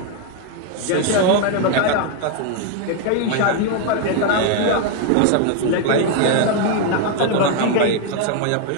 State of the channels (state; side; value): different; both; correlation 0.00